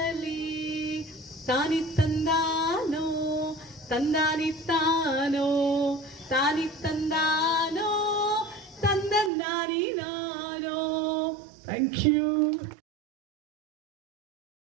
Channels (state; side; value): drops out; left; at 9.3 s